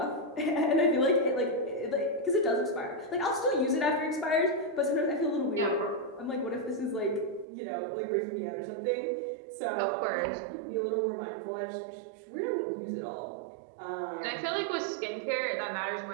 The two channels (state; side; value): drops out; left; at 7.5 s